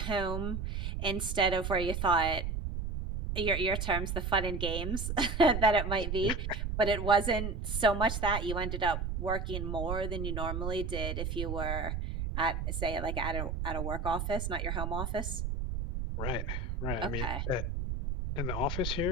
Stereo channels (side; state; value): right; noise; rumble, 3 dB below the sound